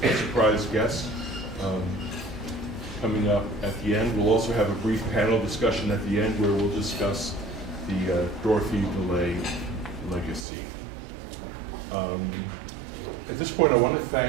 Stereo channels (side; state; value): left; drops out; at 10.5 s